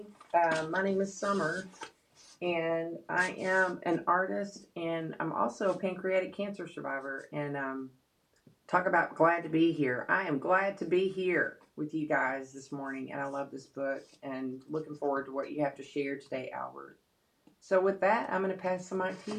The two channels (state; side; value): identical; both; correlation 1.00